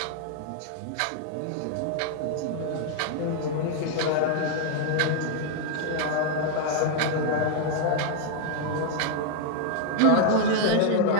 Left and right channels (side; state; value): both; different; correlation 0.00